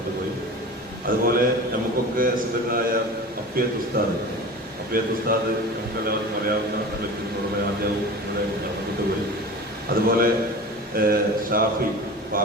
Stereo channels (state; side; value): normal; both; correlation 0.34